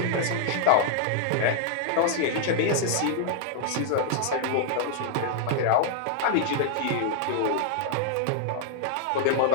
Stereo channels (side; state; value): both; different; correlation -0.01